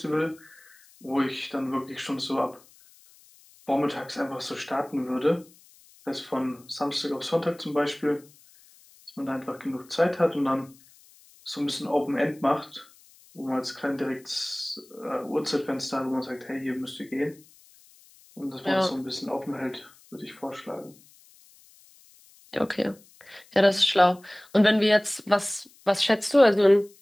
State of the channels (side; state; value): left; noise; hiss, 27 dB below the sound